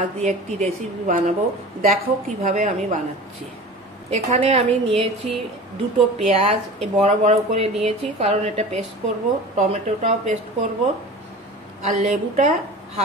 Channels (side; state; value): both; normal; correlation 0.37